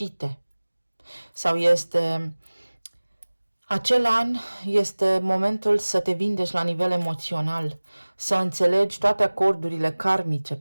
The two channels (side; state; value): both; inverted; correlation -1.00